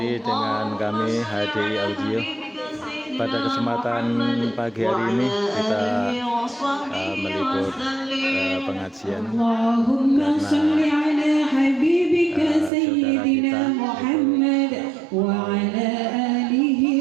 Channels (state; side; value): drops out; left; at 12.7 s